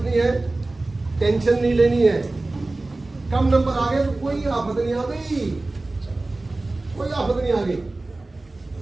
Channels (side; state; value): left; quieter; 3.0 dB